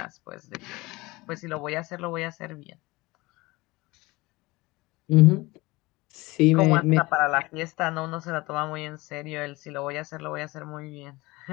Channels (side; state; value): right; quieter; 21.7 dB